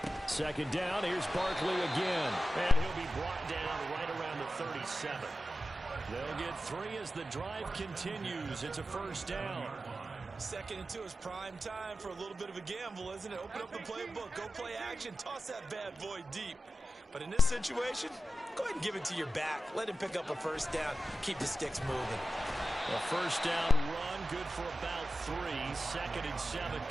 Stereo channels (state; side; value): normal; both; correlation 0.93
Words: Second down, here's Barkley again. And he'll be brought down right around the 37. They'll get 3 as the drive continues. It's a first down. 2nd and 2 is prime time for a little bit of a gamble, isn't it? Open up the playbook, go play action, toss that bad boy deep. But in this situation, go ahead and give it to your back. Let him pick up a first down. Keep the sticks moving. A first down run, good for about 3. 2nd and 7